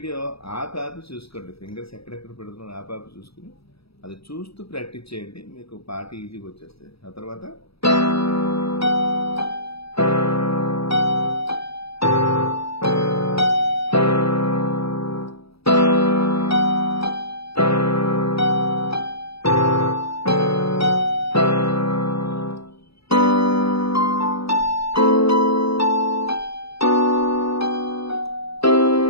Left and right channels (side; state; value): right; late; 0.76 ms